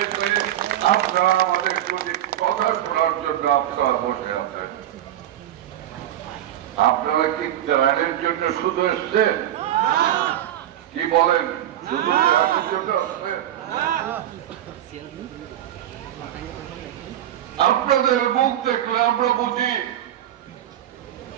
আপনারা আমাদের প্রতি কথা শোনার জন্য আপনারা বসে আছেন। আপনারা কি ত্রাণের জন্য শুধু এসছেন? কি বলেন, শুধু ত্রাণের জন্য আসছেন? আপনাদের মুখ দেখলে আমরা বুঝি,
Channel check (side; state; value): left; quieter; 12.1 dB